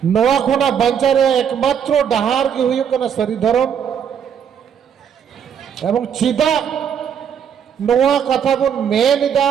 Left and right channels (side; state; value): left; quieter; 8.1 dB